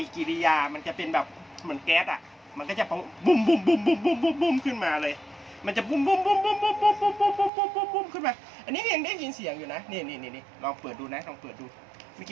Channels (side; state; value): left; drops out; at 7.5 s